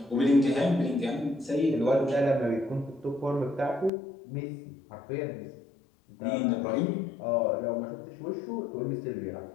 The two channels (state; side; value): drops out; right; at 3.9 s